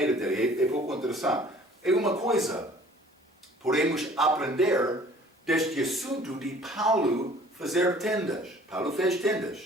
dele. É pouco interessante. É uma coisa. Podemos aprender deste assunto de Paulo fazer tendas. Paulo fez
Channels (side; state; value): both; normal; correlation 0.52